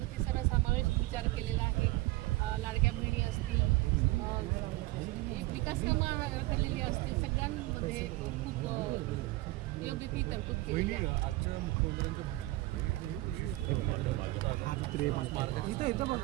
सर्व समावेश विचार केलेला आहे। लाडक्या बहिणी असतील, विकास कामं केलेली असतील, सगळ्यांमध्ये खूप योग्य ती तरतूद केलेली आहे।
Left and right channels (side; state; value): left; quieter; 19.5 dB